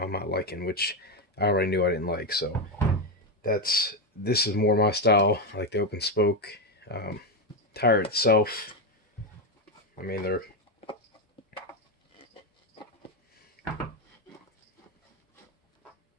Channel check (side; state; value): both; normal; correlation 0.08